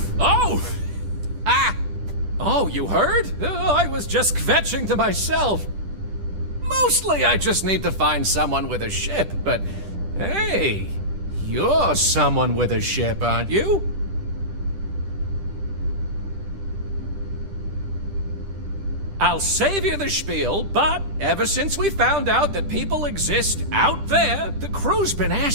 Oh! Ah! Oh, you heard? I was just kvetching to myself. Mostly I just need to find someone with a ship, but hey, you're someone with a ship, aren't you? I'll save you the spiel, but ever since we found out that people exist out there, the crew's been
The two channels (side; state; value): left; late; 10 ms